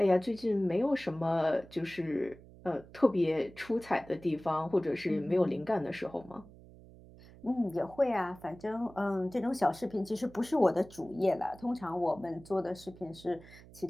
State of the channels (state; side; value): noise; right; hum, 21 dB below the sound